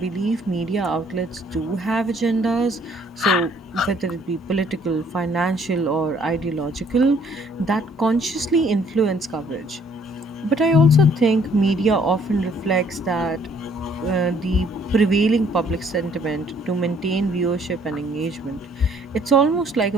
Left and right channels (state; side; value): normal; both; correlation 0.62